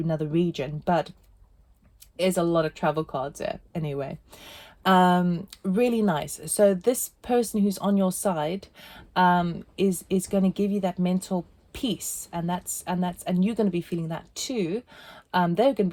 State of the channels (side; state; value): both; identical; correlation 1.00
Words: region, but there's a lot of travel cards there anyway. Really nice. So this person who's on your side is going to give you that mental peace, and you're going to be feeling that too. They're going to